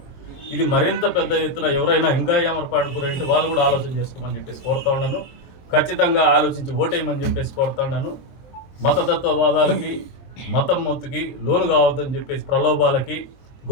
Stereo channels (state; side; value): late; right; 23 ms